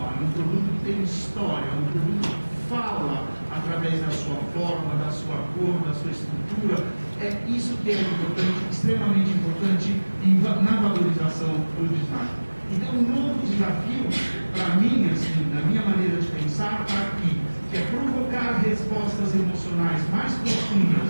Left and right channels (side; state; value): both; inverted; correlation -1.00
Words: é um produto que tem história, é um produto que fala através da sua forma, da sua cor, da sua estrutura. É isso que é importante, extremamente importante na valorização do design. Então, um novo desafio, para mim, assim, na minha maneira de pensar, está aqui, que é provocar respostas emocionais mais profundas,